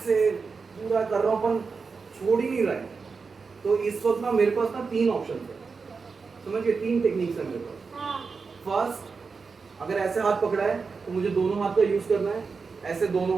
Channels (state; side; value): quieter; left; 4.9 dB